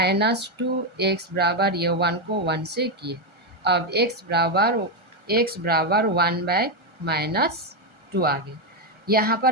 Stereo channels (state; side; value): late; left; 1.3 ms